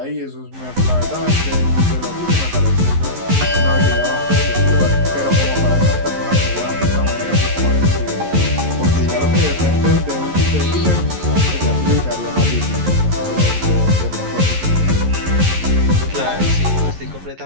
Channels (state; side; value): late; left; 11 ms